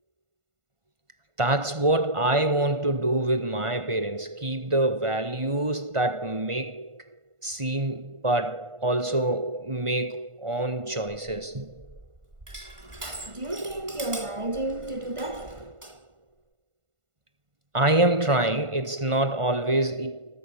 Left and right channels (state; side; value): late; left; 1.5 ms